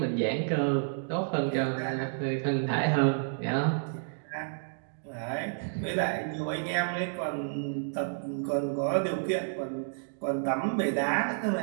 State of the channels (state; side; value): silent; left; digital silence